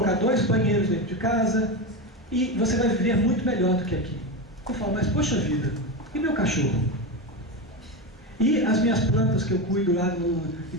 2 banheiros dentro de casa, e você vai viver muito melhor do que aqui. Eu falo: mas poxa vida, e meu cachorro? E as minhas plantas que eu cuido lá, e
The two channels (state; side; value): normal; both; correlation 0.17